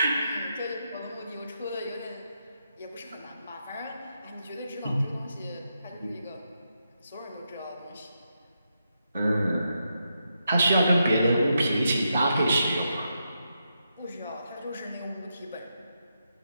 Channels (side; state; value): both; inverted; correlation -0.83